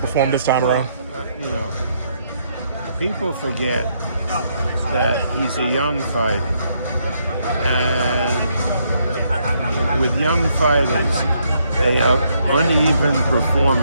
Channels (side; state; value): both; inverted; correlation -0.74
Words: this time around? You know, people forget that he's a young fighter. And with young fighters, they have uneven